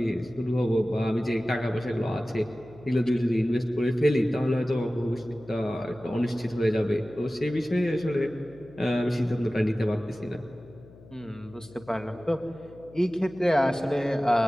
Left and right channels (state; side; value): noise; left; hum, 22 dB below the sound